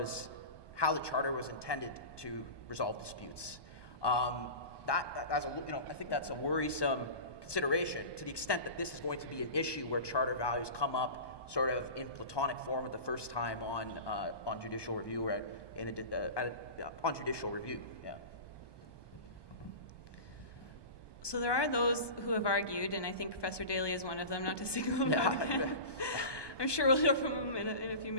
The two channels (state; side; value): late; right; 1.2 ms